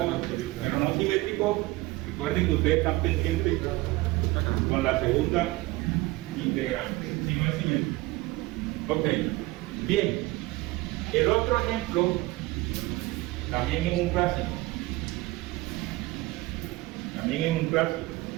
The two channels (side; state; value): left; quieter; 20.6 dB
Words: pero no simétrico. Recuerden que ustedes están pendientes con la segunda integral, si no es simétrico. Ok, bien. El otro ejemplo también es un clásico. También es un clásico.